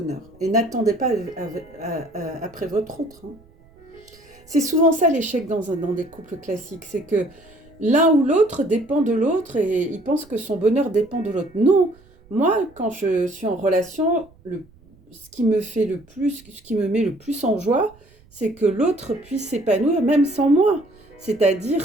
Et n'attendez pas après votre autre. Hein. C'est souvent ça l'échec dans des couples classiques, c'est que l'un ou l'autre dépend de l'autre et il pense que son bonheur dépend de l'autre. Non, moi, quand je suis en relation, ce qui me met le plus en joie, c'est que l'autre puisse s'épanouir même sans moi.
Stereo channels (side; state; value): right; noise; rumble, 28 dB below the sound